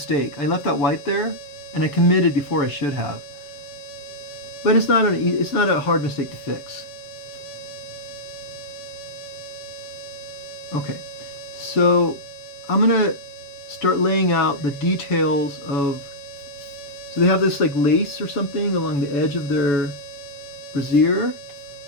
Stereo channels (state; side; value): late; right; 7.0 ms